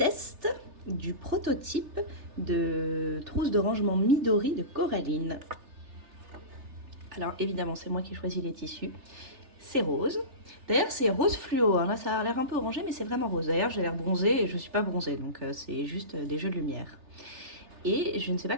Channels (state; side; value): late; left; 3.4 ms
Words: du prototype de trousse de rangement Midori de Coraline. Alors évidemment, c'est moi qui ai choisi les tissus. C'est rose. D'ailleurs, c'est rose fluo. Hein. Là, ça a l'air un peu orangé, mais c'est vraiment rose. D'ailleurs, j'ai l'air bronzée et je ne suis pas bronzée, donc c'est juste des jeux de lumière. Et je ne sais pas